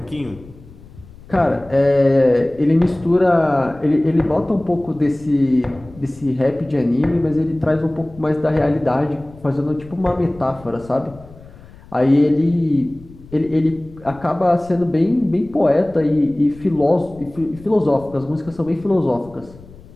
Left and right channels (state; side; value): noise; left; rumble, 21 dB below the sound